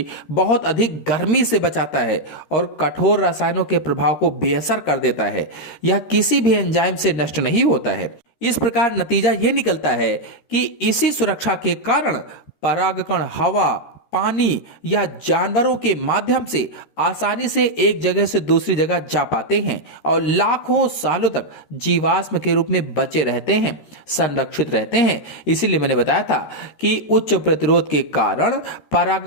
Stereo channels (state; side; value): late; right; 13 ms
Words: बहुत अधिक गर्मी से बचाता है और कठोर रसायनों के प्रभाव को बेअसर कर देता है। यह किसी भी एंजाइम से नष्ट नहीं होता है। इस प्रकार नतीजा यह निकलता है कि इसी सुरक्षा के कारण परागकण हवा, पानी या जानवरों के माध्यम से आसानी से एक जगह से दूसरी जगह जा पाते हैं और लाखों सालों तक जीवाश्म के रूप में बचे रहते हैं, संरक्षित रहते हैं। इसीलिए मैंने बताया था कि उच्च प्रतिरोध के कारण